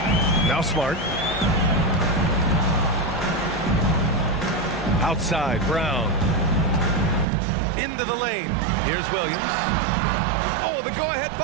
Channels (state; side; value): drops out; left; at 7.2 s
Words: Now Smart. Outside, Brown. Into the lane. Here's Williams. Oh, the go-ahead